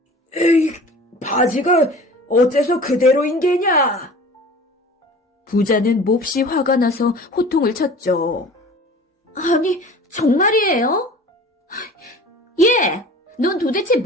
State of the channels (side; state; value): both; normal; correlation 0.42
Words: 에이, 바지가 어째서 그대로인 게냐? 부자는 몹시 화가 나서 호통을 쳤죠. 아니, 정말이에요? 얘, 넌 도대체